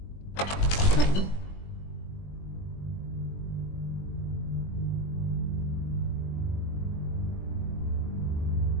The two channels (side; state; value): right; late; 21 ms